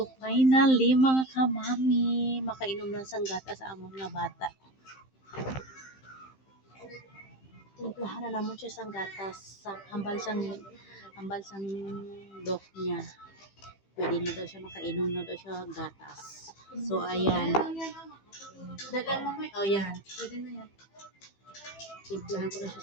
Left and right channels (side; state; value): right; late; 15 ms